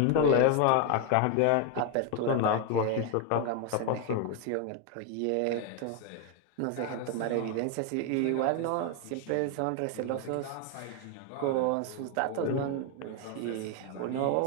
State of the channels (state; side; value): different; both; correlation 0.01